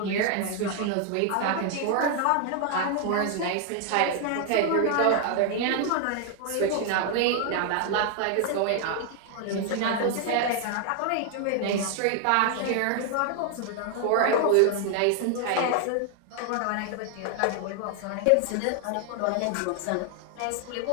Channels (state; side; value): different; both; correlation 0.00